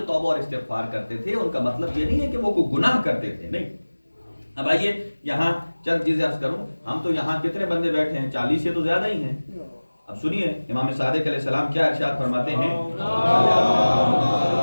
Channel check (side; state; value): both; inverted; correlation -1.00